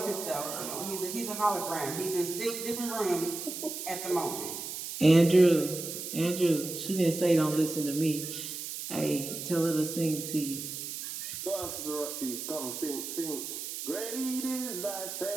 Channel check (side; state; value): right; noise; hiss, 7 dB below the sound